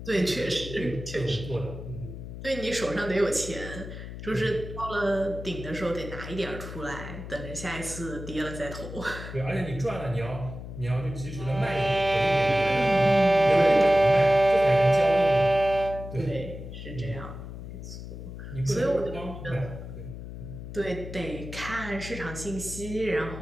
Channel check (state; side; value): noise; left; hum, 10 dB below the sound